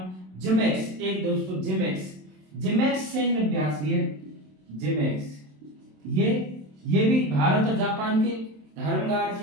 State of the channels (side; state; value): left; late; 27 ms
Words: जिमेक्स, एक दोस्तों जिमेक्स सैन्य अभ्यास भी है, जिमेक्स, ये भी भारत और जापान के धर्म